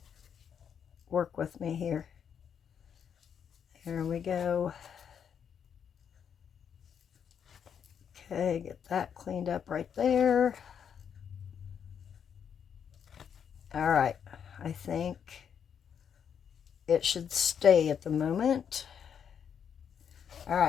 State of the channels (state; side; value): quieter; right; 7.8 dB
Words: Work with me here. There we go. Okay, get that cleaned up right there. All right, I think it should stay at the moment. All